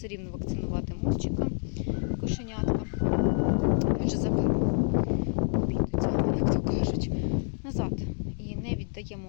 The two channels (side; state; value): right; silent; 59 dB below the other